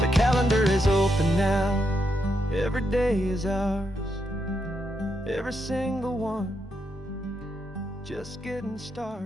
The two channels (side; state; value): both; normal; correlation 0.82